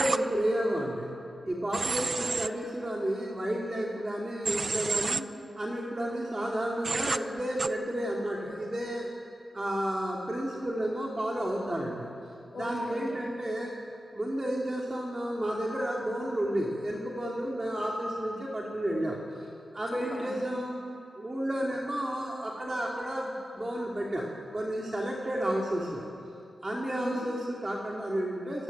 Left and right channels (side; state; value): both; normal; correlation 0.93